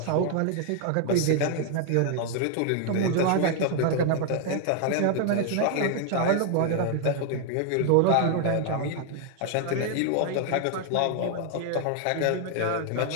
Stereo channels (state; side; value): different; both; correlation 0.00